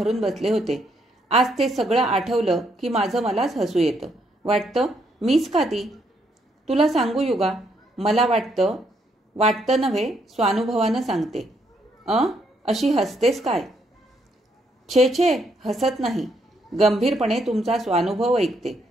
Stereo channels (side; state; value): both; normal; correlation 0.73